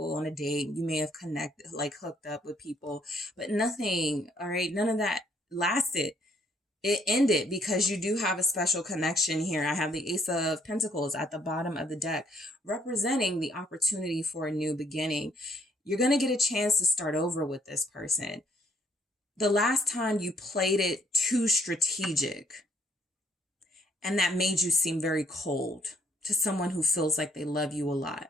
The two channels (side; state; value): both; normal; correlation 0.67